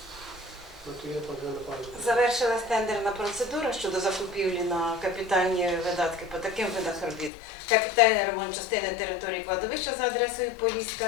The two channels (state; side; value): drops out; right; at 7.3 s